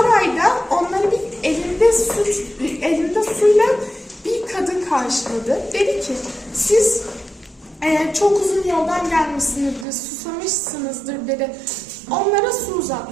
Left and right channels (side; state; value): left; drops out; at 9.9 s